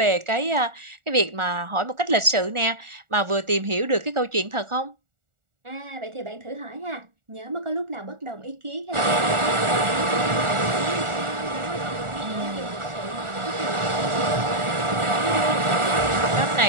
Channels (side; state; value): left; late; 1.4 ms